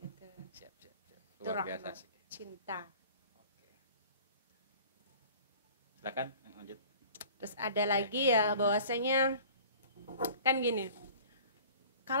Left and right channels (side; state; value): both; inverted; correlation -0.47